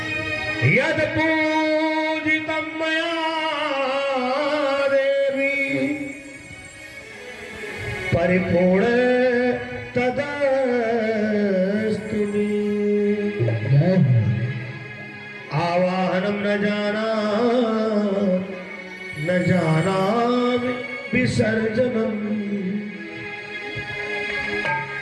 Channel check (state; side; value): identical; both; correlation 1.00